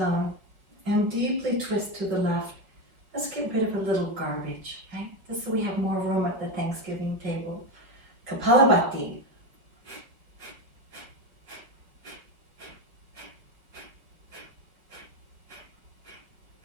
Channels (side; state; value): left; late; 5.2 ms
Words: and deeply twist to the left. Let's get rid of a little garbage, right? This so we have more room at the Thanksgiving table. Kapalabhati.